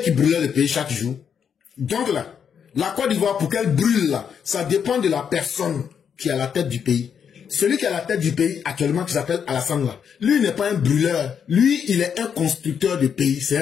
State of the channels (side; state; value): right; quieter; 7.5 dB